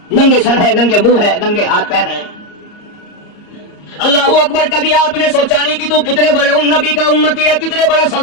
ننگے سر ہے، ننگے منہ ہے، ننگے ہاتھ پیر ہیں۔ اللہ اکبر! کبھی آپ نے سوچا نہیں کہ تو کتنے بڑے نبی کا امتی ہے، کتنے بڑے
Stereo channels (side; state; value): right; late; 34 ms